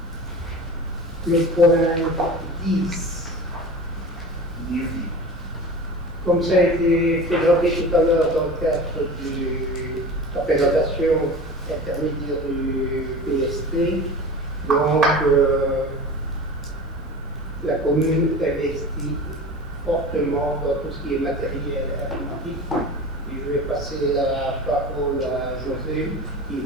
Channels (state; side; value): normal; both; correlation 0.34